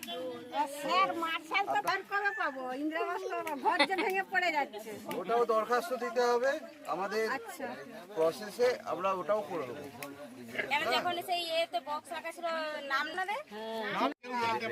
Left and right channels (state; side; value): identical; both; correlation 1.00